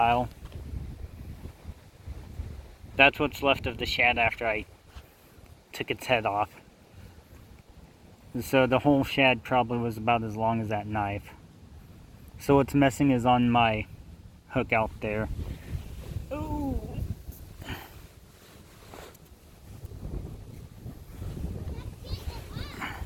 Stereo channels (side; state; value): both; identical; correlation 1.00